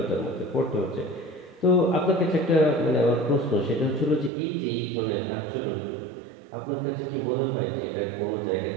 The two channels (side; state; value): left; drops out; at 4.3 s